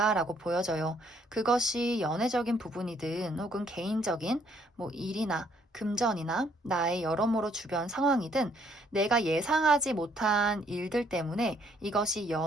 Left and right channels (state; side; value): normal; both; correlation 0.66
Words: 보여져요. 그것이 연애적인 부분이든 혹은 개인적인 뭐 일이나 금전이나 나의 여러모로 주변 상황이든 내가 예상하지 못한 일들 때문에 이것이